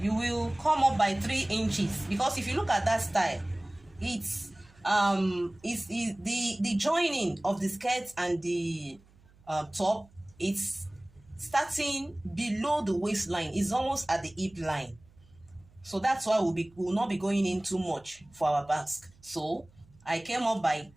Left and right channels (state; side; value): noise; right; hum, 28 dB below the sound